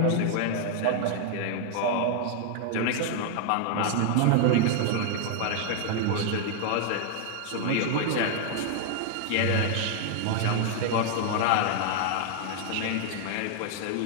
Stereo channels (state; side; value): different; both; correlation 0.00